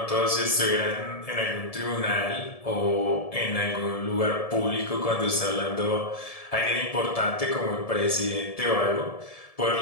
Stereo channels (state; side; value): late; right; 1.7 ms